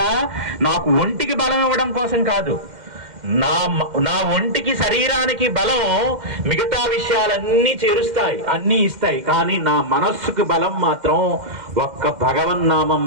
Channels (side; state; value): left; late; 2.1 ms